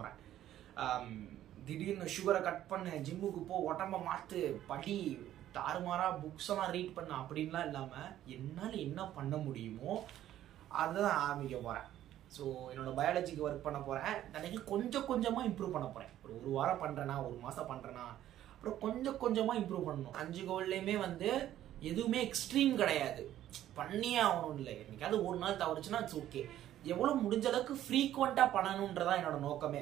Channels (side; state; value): left; quieter; 12.4 dB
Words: திடீர்னு சுகரை கட் பண்ணு, ஜிம்முக்கு போ, உடம்ப மாத்து, படி, தாறுமாறா புக்ஸ் எல்லாம் ரீட் பண்ண அப்படின்லாம் இல்லாம என்னால் என்ன பண்ண முடியுமோ அதுதான் ஆரம்பிக்க போறேன். ஸோ என்னோட பயாலஜிக்கு ஒர்க் பண்ண போறேன். எனக்கு கொஞ்சம் கொஞ்சமா இம்ப்ரூவ் பண்ண போறேன். ஒரு வாரம் பண்றேன்னா, ஒரு மாசம் பண்றேன்னா, அப்புறம் கொஞ்சம் கொஞ்சமா இம்ப்ரூவ் பண்ணணும். 5 கோல்லையுமே எதுவுமே எக்ஸ்ட்ரீம் கிடையாது, பண்ணியே ஆகணும். இல்லை, என்னைக்காவது ஒரு நாள் தவறுச்சுன்னா இட்ஸ் ஓகே. எவ்வளவு முடிஞ்ச அளவுக்கு ஃப்ரீக்வெண்டா பண்ணணும்ன்றதான் என்னோட